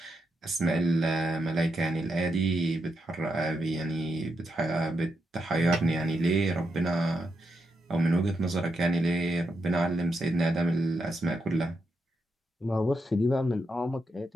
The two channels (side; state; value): both; normal; correlation 0.83